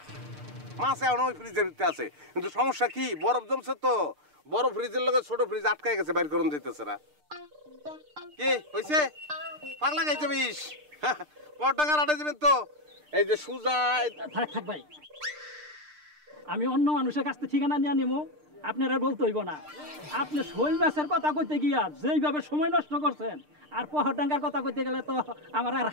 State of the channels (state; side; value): late; left; 6.6 ms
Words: মাছ এখন ওই ফ্রিজের ভিতরে আছে, কিন্তু সমস্যা কি, বরফ জমছে তো, বড় ফ্রিজের লগে ছোট ফ্রিজ আটকায় গেছে, বাইর করুন দিতেছে না। কি হয়েছে? পাগলা খাইছে বিষ। পাটাঙ্গার হাটে যাবেন তো? এই যে সুজা। থাক ভাই, আমি অন্য মানুষের কাছ থেকে ঠিকানা নিয়ে নিবো, আপনারা বলতে হইব না। আপনি শৈল মাছের কথা কইতে গিয়া যেইভাবে সময় নষ্ট করছেন, আর পাটাঙ্গার কথা কইতে গেলে তো আমার আর